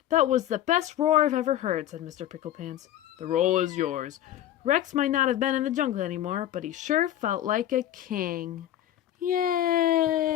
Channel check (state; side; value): quieter; right; 12.3 dB